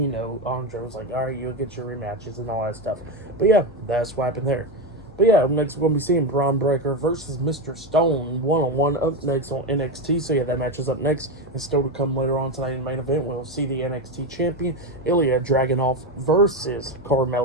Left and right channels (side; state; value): left; noise; hum, 22 dB below the sound